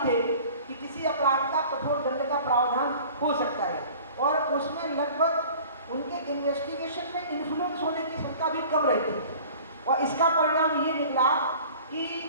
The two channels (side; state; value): both; inverted; correlation -0.45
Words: थे कि किसी अपराध का कठोर दंड का प्रावधान हो सकता है। और उसमें लगभग उनके इन्वेस्टिगेशन में इन्फ्लुएंस होने की क्षमता भी कम रहती है। और इसका परिणाम ये निकला कि